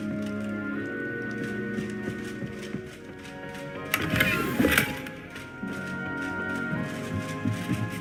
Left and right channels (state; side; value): noise; left; hum, 24 dB below the sound